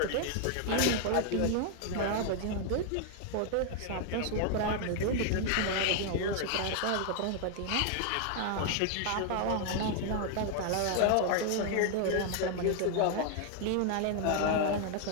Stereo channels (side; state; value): both; different; correlation 0.00